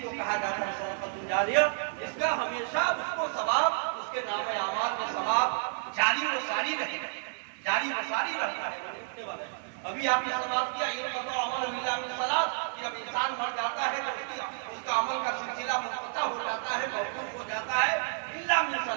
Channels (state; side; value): silent; left; digital silence